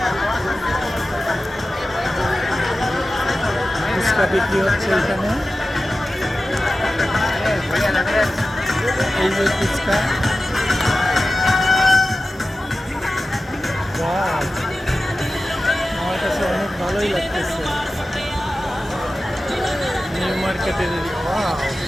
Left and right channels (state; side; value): normal; both; correlation 0.94